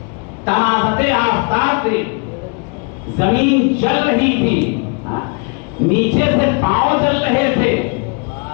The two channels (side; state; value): right; quieter; 33.8 dB